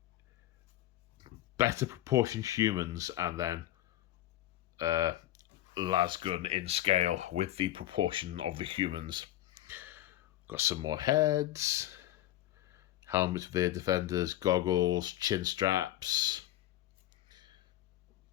better proportioned humans, and then lasgun in scale with the proportion of the humans. Got some more heads, helmets for the defenders, goggles, chin straps.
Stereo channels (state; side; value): quieter; right; 14.2 dB